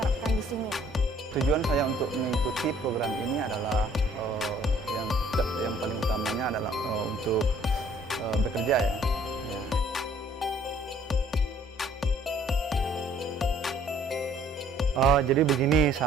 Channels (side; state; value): both; normal; correlation 0.59